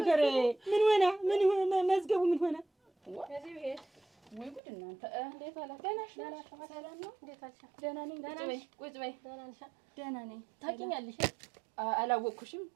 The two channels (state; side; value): drops out; left; at 4.6 s